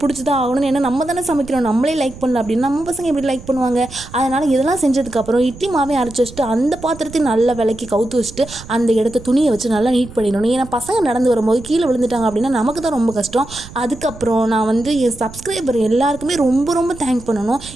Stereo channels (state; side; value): noise; right; rumble, 16 dB below the sound